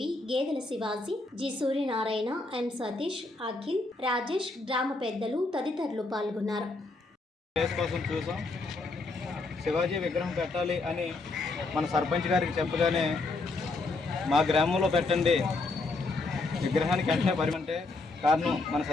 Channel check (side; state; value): right; quieter; 3.3 dB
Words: గేదెల శివాజీ, జి సూర్యనారాయణ, ఎం సతీష్, అఖిల్, రాజేష్, గ్రామ పెద్దలు తదితరులు పాల్గొన్నారు. కోసం చూసాం. శివాజీ విగ్రహం పెట్టాలి అని మన సర్పంచ్ గారికి చెప్పగానే మా గ్రామంలో పెట్టండి విగ్రహానికి వెంటనే పరిమంటే కారణం మన